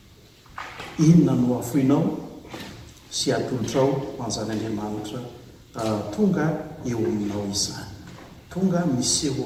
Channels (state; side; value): identical; both; correlation 1.00